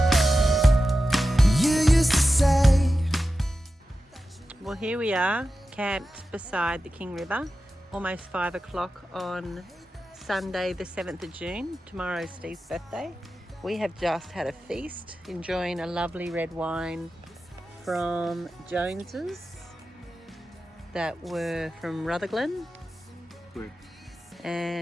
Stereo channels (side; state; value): both; normal; correlation 0.93